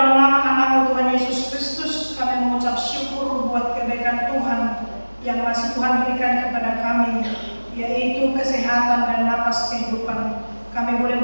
nama anak-Mu Tuhan Yesus Kristus, kami mengucap syukur buat kebaikan Tuhan yang masih Tuhan berikan kepada kami, yaitu kesehatan dan napas kehidupan. Kami boleh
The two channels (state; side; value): inverted; both; correlation -1.00